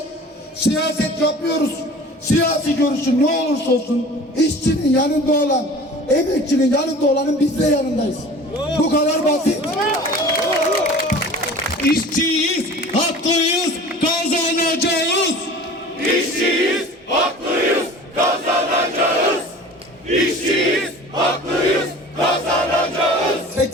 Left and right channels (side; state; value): both; normal; correlation 0.42